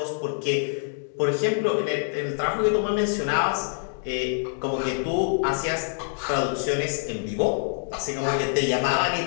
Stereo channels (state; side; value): silent; right; digital silence